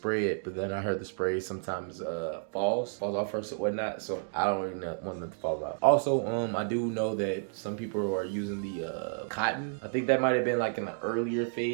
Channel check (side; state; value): left; silent; digital silence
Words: it, but then I heard the spray sometimes falls off first or whatnot, so I don't really want them to fall off. Also, I do know that some people are using the cotton. I think that might have been like in the earlier